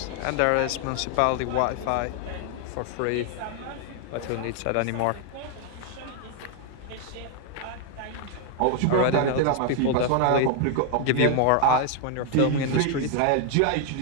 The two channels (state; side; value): different; both; correlation 0.00